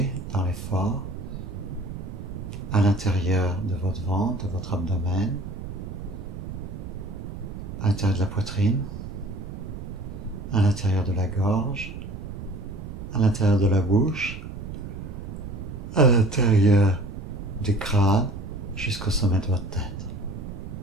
dans l'effort à l'intérieur de votre ventre, de votre abdomen, à l'intérieur de la poitrine, à l'intérieur de la gorge, à l'intérieur de la bouche, à l'intérieur du crâne, jusqu'au sommet de votre tête.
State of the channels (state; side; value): noise; right; rumble, 9 dB below the sound